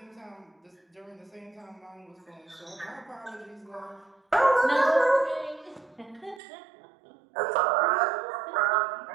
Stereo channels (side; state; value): left; drops out; at 6.4 s